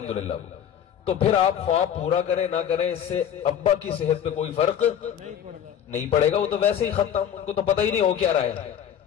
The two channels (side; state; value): right; quieter; 9.3 dB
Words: तो फिर आप ख्वाब पूरा करें ना करें, इससे अब्बा की सेहत पे कोई फर्क नहीं पड़ेगा। वो तो वैसे ही खत्म, उनको तो पता ही नहीं हो क्या रहा है,